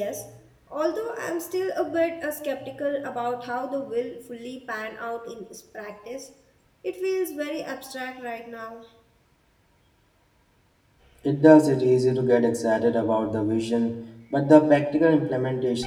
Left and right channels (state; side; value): identical; both; correlation 1.00